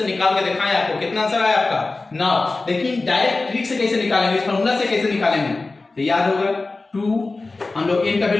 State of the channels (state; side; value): quieter; right; 3.5 dB